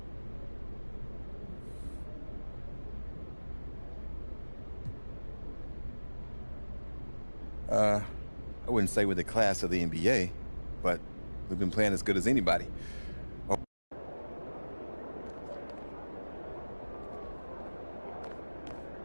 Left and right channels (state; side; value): inverted; both; correlation -1.00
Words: I wouldn't say we're the class of the NBA, but we've been playing as good as anybody.